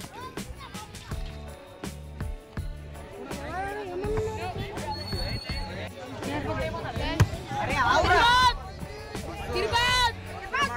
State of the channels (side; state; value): both; identical; correlation 1.00